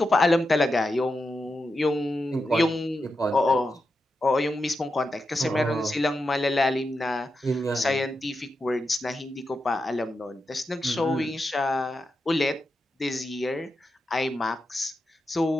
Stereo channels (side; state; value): both; normal; correlation 0.88